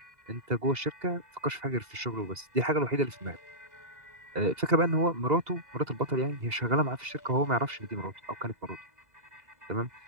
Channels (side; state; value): left; late; 2.0 ms